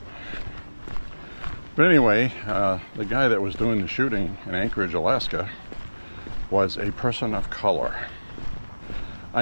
But anyway, the guy that was doing the shooting in Anchorage, Alaska, was a person of color.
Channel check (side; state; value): both; inverted; correlation -1.00